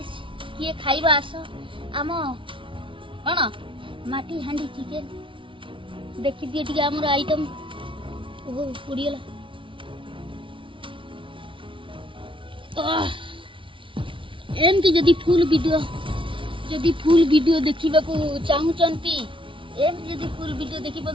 किए खाइबा आस आम कौन माटी हांडी चिकेन देखी दिए टिके हमर आइटम ओहो पुड़ीला एमती जदी फुल वीडियो देखिबा को चाहूचंती एमती जदी फुल वीडियो देखिबा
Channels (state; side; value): late; left; 0.25 ms